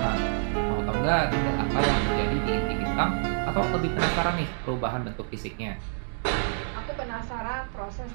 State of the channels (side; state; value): left; silent; digital silence